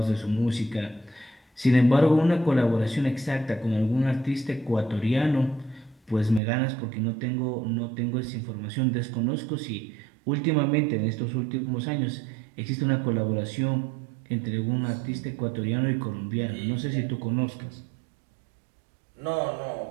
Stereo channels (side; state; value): left; drops out; at 6.4 s